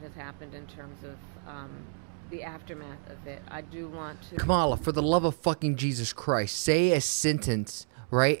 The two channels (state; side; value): silent; left; 56 dB below the other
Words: has happened in terms of the aftermath of it. I do want to... Kamala, for the love of fucking Jesus Christ, say a sentence, right?